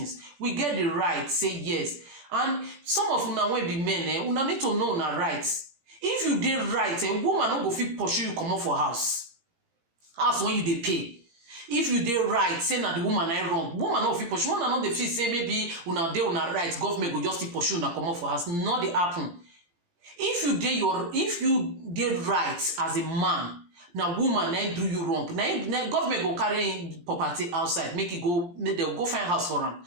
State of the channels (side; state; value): left; late; 17 ms